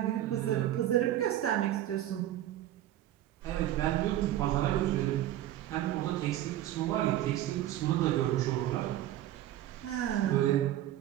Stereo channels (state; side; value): quieter; left; 13.1 dB